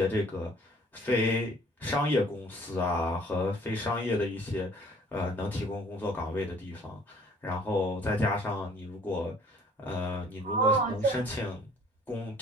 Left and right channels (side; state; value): both; normal; correlation 0.56